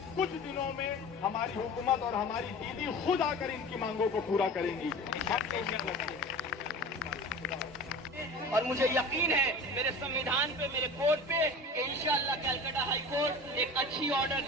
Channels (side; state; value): both; normal; correlation 0.36